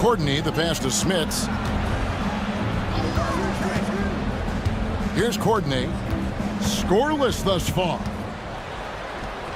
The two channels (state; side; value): identical; both; correlation 1.00